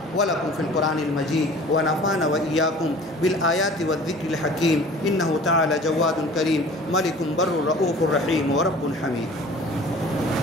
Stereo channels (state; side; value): normal; both; correlation 0.46